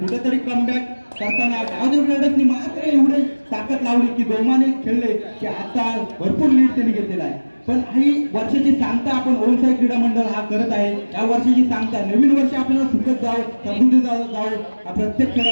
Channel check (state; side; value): inverted; both; correlation -1.00